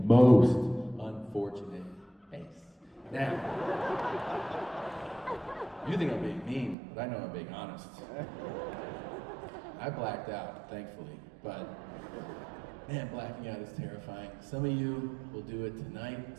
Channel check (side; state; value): left; drops out; at 6.8 s